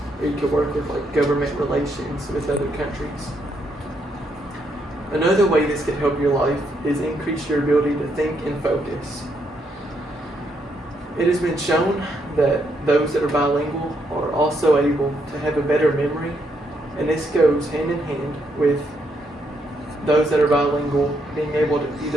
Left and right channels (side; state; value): both; normal; correlation 0.76